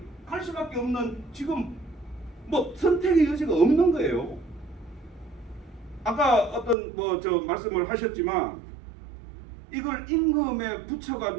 할 수밖에 없는, 지금 선택의 여지가 없는 거예요. 아까 어떤 말씀을 하셨지만 이걸 임금에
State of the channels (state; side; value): drops out; left; at 6.8 s